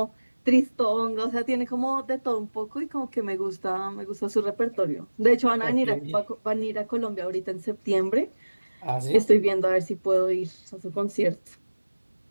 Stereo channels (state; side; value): inverted; both; correlation -1.00